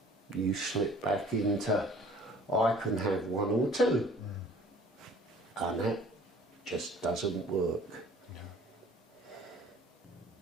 you slip back into I can have one or two. and that just doesn't work.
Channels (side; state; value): both; normal; correlation 0.51